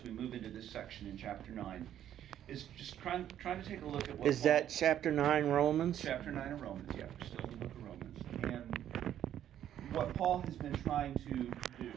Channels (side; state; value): left; quieter; 10.9 dB